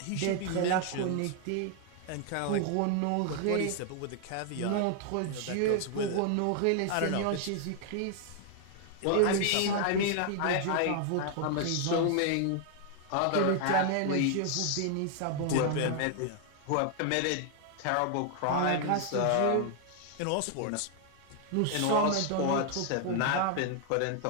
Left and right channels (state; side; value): different; both; correlation 0.00